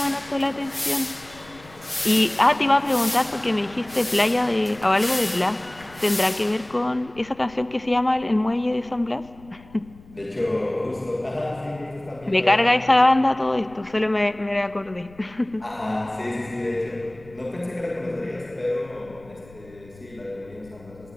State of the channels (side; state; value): left; noise; rumble, 23 dB below the sound